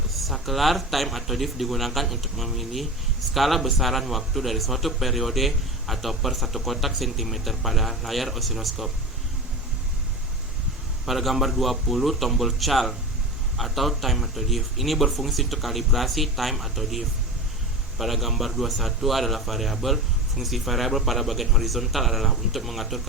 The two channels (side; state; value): both; normal; correlation 0.28